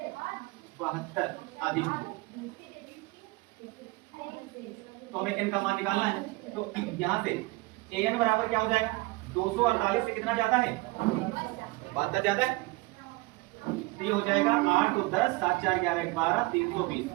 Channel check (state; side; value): quieter; left; 23.5 dB